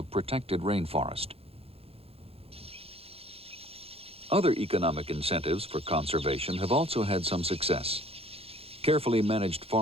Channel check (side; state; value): left; late; 0.28 ms